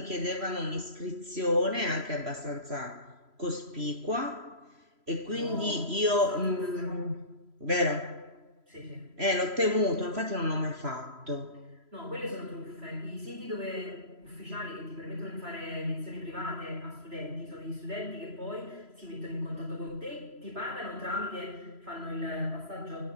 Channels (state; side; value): late; left; 3.0 ms